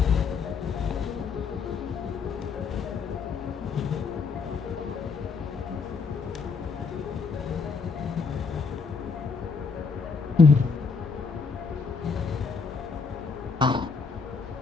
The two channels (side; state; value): right; quieter; 5.0 dB